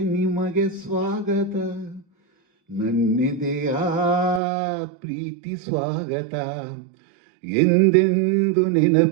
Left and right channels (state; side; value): drops out; left; at 4.4 s